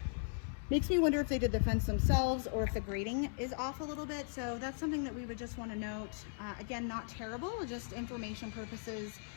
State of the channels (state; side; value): silent; right; digital silence